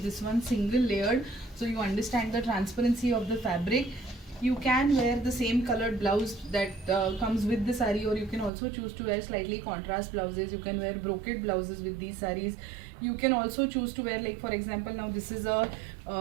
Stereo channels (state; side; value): drops out; left; at 8.5 s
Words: this one single layered so you understand the transparency of the fabric. You can wear the same colored blouse that comes with the saree, or you can also choose to wear slightly contrast blouses. You can wear brocade blouses with these sarees. You can also choose to wear, like for example, now this is a